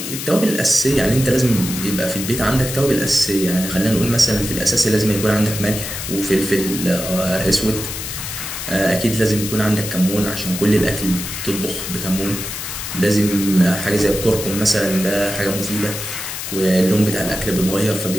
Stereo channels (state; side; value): noise; left; hiss, 6 dB below the sound